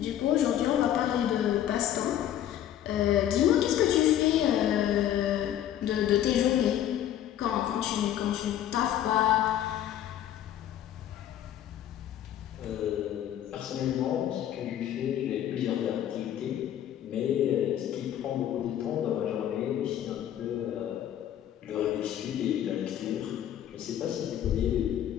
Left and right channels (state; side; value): quieter; right; 11.2 dB